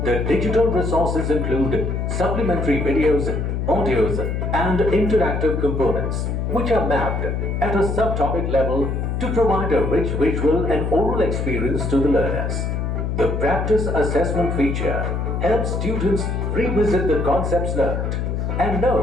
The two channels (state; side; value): noise; left; hum, 1 dB below the sound